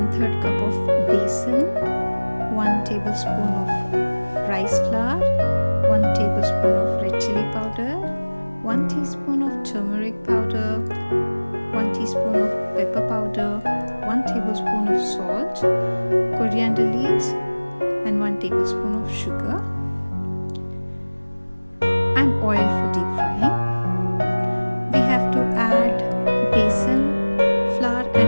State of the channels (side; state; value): both; inverted; correlation -1.00